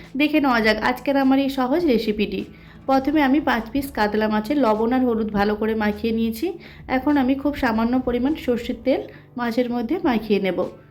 দেখে নেওয়া যাক আজকের আমার এই সহজ রেসিপিটি। প্রথমে আমি 5 পিস কাতলা মাছের লবণ আর হলুদ ভালো করে মাখিয়ে নিয়েছি। এখন আমি খুব সামান্য পরিমাণ সর্ষের তেল মাছের মধ্যে মাখিয়ে নেব।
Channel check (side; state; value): both; identical; correlation 1.00